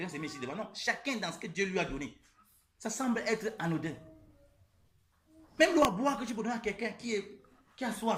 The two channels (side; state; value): both; identical; correlation 1.00